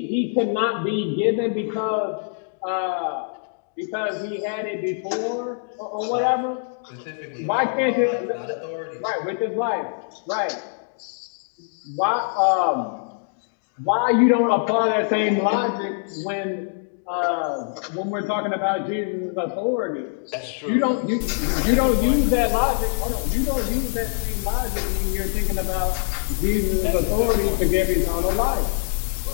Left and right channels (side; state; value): right; silent; digital silence